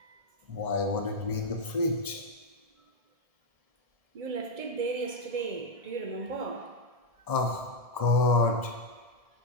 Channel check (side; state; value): left; late; 1.7 ms